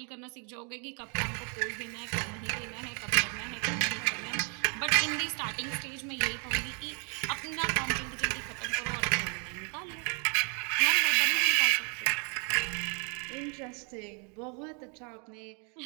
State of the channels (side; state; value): left; quieter; 37.3 dB